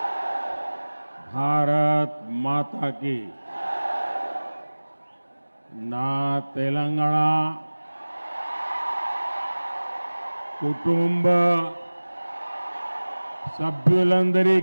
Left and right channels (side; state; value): both; inverted; correlation -1.00